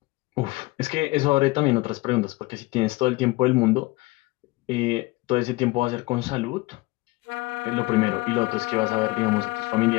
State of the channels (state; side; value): quieter; right; 22.4 dB